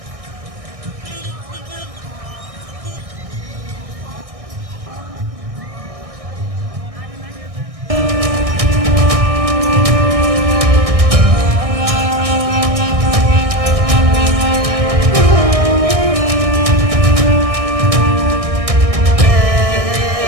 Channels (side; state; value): left; late; 1.6 ms